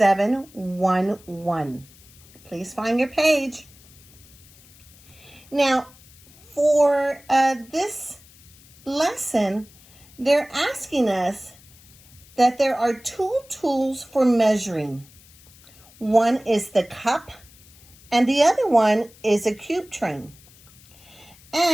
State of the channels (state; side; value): noise; left; hiss, 25 dB below the sound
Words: Please find your page. Now, for this lesson, they're asking us that there are two tools for measuring. One is the cup, and the other one is a cube train.